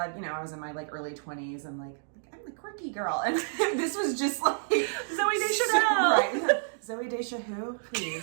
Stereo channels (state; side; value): silent; left; digital silence